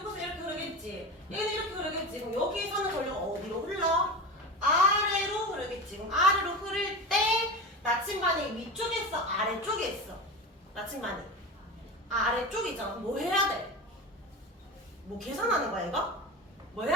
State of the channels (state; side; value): normal; both; correlation 0.27